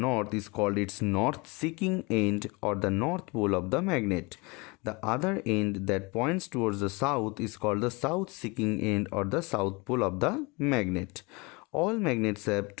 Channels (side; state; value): right; quieter; 27.0 dB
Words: is called its north-seeking end, or the north pole of the magnet. The other end that points towards the south is called the south-seeking end, or the south pole of the magnet. All magnets have